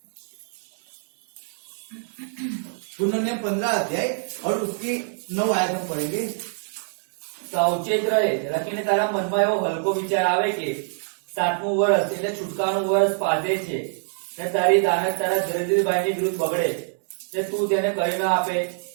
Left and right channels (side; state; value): left; silent; digital silence